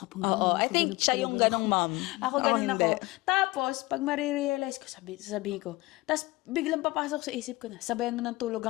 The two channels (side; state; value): right; quieter; 21.1 dB